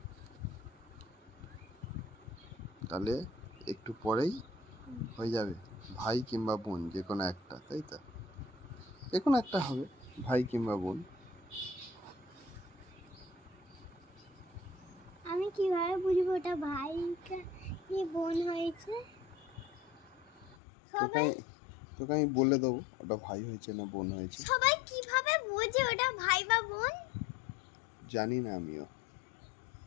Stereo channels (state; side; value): drops out; right; at 20.6 s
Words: তাহলে একটু পরেই হয়ে যাবে ভাই কিংবা বোন, যে কোনো একটা, তাই তো? যে কোনো একটা হবে, ভাই কিংবা বোন। আমি কিভাবে বুঝবো ওটা ভাই কি বোন হয়েছে? সবাই তোকে আমি বলে দেবো ওটা ভাই হয়েছে না বোন হয়েছে। সবাই কিভাবে বোঝে ওটা ভাই বা বোন? জানি না আমিও।